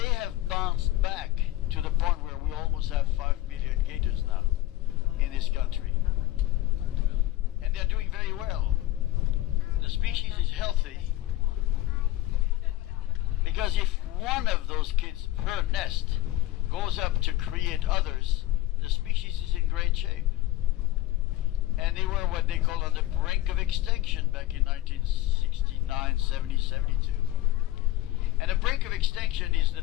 have bounced back to the point where we almost have 5 million gators now in this country. And they're doing very well. The species is healthy because if one of those kids per nest goes up to create others, the species is in great shape. And they were what they call on the brink of extinction back in 1969, 70, 72. And the brink of extinction is the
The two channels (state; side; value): quieter; right; 15.4 dB